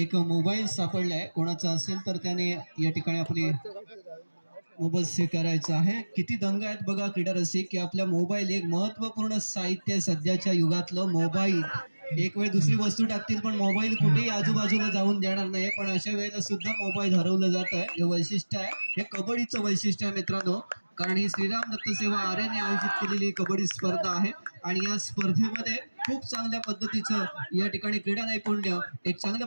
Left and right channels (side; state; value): both; inverted; correlation -1.00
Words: मोबाईल सापडलाय, कोणाचा असेल तर त्याने या ठिकाणी आपली मोबाईल स्वीकारायचा आहे. किती दंग आहेत बघा क्रीडा रसिक की आपल्या मोबाईल एक महत्वपूर्ण साहित्य सध्याच्या युगातलं मोबाईल. एक वेळ दुसरी वस्तू टाकतील पण मोबाईल कुठेही आजूबाजूला जाऊन देणार नाही. पण अशा वेळेला सुद्धा मोबाईल हरवलं जात आहे. हे वैशिष्ट्य आहे, हे कबड्डीचं वैशिष्ट्य आहे मित्रांनो. कारण ही श्रीराम दत्त सेवा आर्याने आयोजित केलेली कबड्डी स्पर्धा आहे आणि या स्पर्धेमध्ये खूप चांगल्या पद्धतीचं या ठिकाणी क्रीडा नैपुण्य, एक